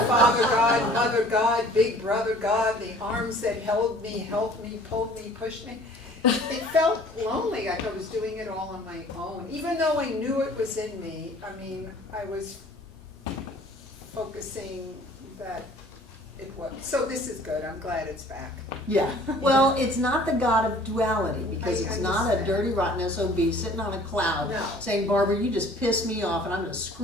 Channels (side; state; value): both; normal; correlation 0.51